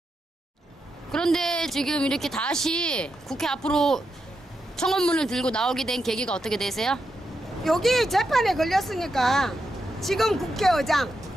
이렇게 다시 국회 앞으로 청원문을 들고 나오게 된 계기가 어떻게 되세요? 여기 재판에 걸렸으니까 지금 국회의장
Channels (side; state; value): both; normal; correlation 0.85